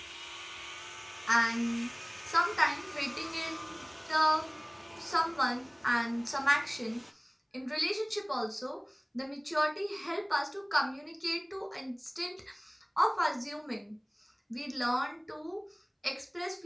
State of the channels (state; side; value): identical; both; correlation 1.00